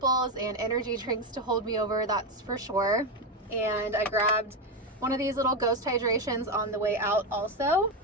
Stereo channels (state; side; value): normal; both; correlation 0.10